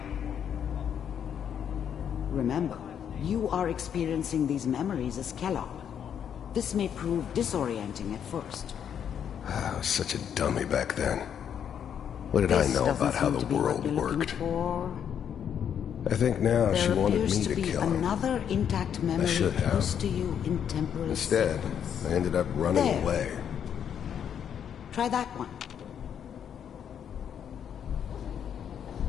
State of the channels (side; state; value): right; quieter; 8.6 dB